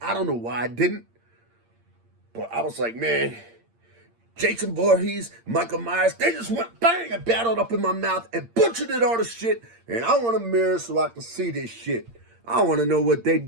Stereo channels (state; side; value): late; left; 8.7 ms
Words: I don't know why I didn't. But I was like, man, Jason Voorhees, Michael Myers, they just went bang and battled up in my mouth and butchered it all the shit. And I want a mirror so I can see this shit. I want to know what they